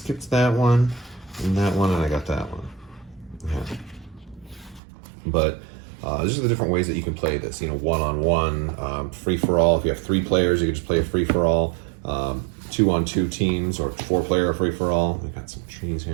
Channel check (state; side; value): drops out; left; at 4.8 s